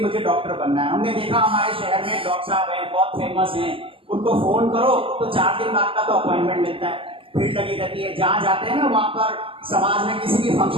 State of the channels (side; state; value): left; late; 0.26 ms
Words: मुझे डॉक्टर बनना है। हमने देखा हमारे शहर में डॉक्टर साहब हैं, बहुत फेमस हैं, उनको फोन करो तो 4 दिन बाद का तो अपॉइंटमेंट मिलता है, भीड़ लगी रहती है। जहाँ जाते हैं ना वहां पर समाज में किसी भी